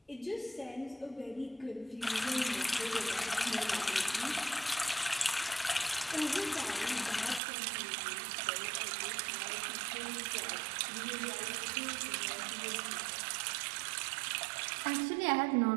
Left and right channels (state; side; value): drops out; left; at 7.4 s